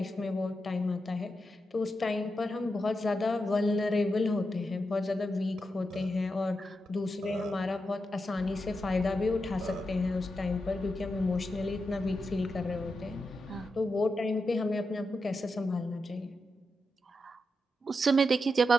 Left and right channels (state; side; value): normal; both; correlation 0.87